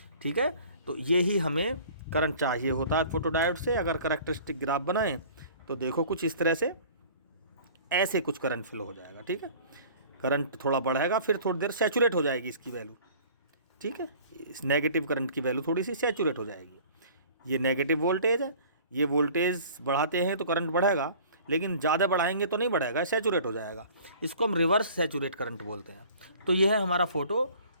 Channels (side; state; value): both; inverted; correlation -0.48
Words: ठीक है, तो यही हमें करंट चाहिए होता है फोटोडायोड से। अगर कैरेक्टरिस्टिक ग्राफ बनाएं तो देखो कुछ इस तरह से ऐसे कुछ करंट फ्लो हो जाएगा, ठीक है। करंट थोड़ा बढ़ेगा, फिर थोड़ी देर सैचुरेट हो जाएगी इसकी वैल्यू, ठीक है। इस नेगेटिव करंट की वैल्यू थोड़ी सी सैचुरेट हो जाएगी। ये नेगेटिव वोल्टेज है, ये वोल्टेज बढ़ाते हैं तो करंट बढ़ेगा, लेकिन ज़्यादा बढ़ाएंगे तो नहीं बढ़ेगा, सैचुरेट हो जाएगा। इसको हम रिवर्स सैचुरेट करंट बोलते हैं। तो ये है हमारा फोटो